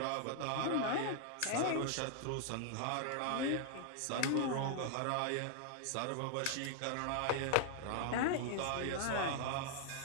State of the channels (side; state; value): both; different; correlation 0.00